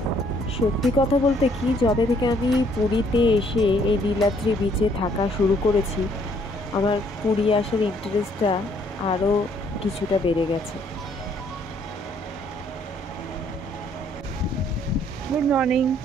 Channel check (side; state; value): both; normal; correlation 0.65